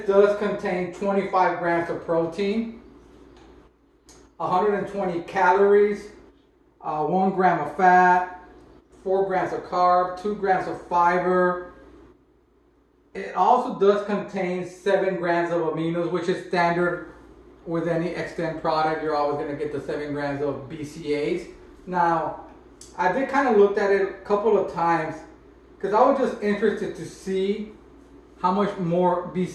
does contain 25 grams of protein, 120 calories, 1 gram of fat, 4 grams of carb, 2 grams of fiber. It also does contain 7 grams of aminos, which is standard with any Xtend product. You're always going to get the 7 grams of Bcaas. Now, I did kind of looked at it a couple of times because I was just interested to see how much more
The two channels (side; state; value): both; identical; correlation 1.00